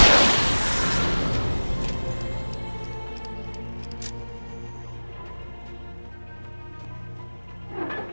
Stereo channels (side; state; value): both; inverted; correlation -1.00